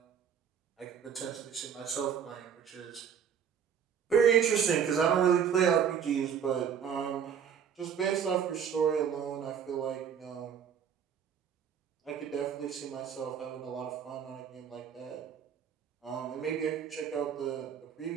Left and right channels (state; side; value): quieter; left; 7.8 dB